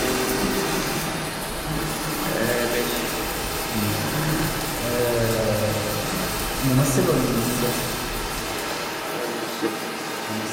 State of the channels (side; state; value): both; identical; correlation 1.00